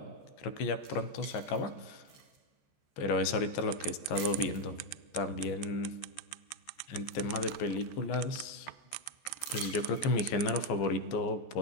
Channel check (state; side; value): late; right; 14 ms